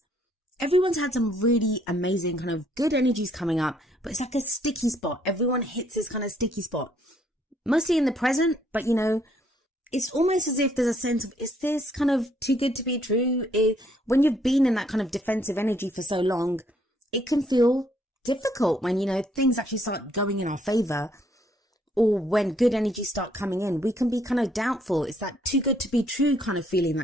everyone's had some really amazing kind of good energies coming up, but it's like a sticky spot. Everyone hits this kind of sticky spot. Mostly in the present, but you know, it's almost as if there's a sense of, is this kind of too good to be true? When you've been in that kind of defensive energy for so long, it can feel difficult when, you know, things actually start going in our favor, or when good energies start coming in, we can be kind of doubtful. It's that too good to be true kind of feeling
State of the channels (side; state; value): both; normal; correlation 0.68